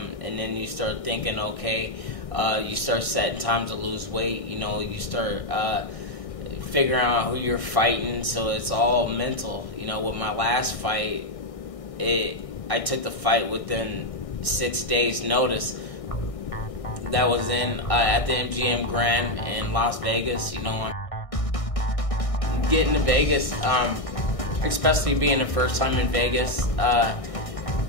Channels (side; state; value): right; late; 1.6 ms